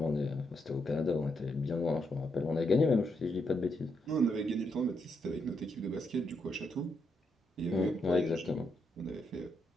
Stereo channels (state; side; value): normal; both; correlation 0.79